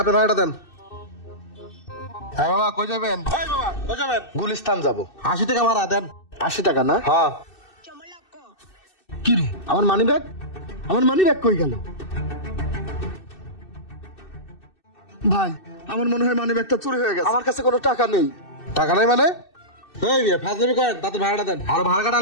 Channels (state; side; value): late; right; 2.6 ms